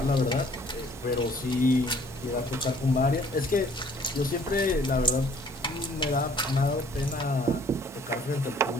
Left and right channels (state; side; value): normal; both; correlation 0.57